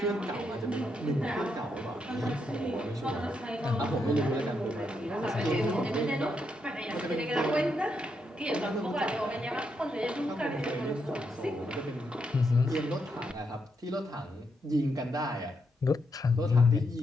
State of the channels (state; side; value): normal; both; correlation 0.80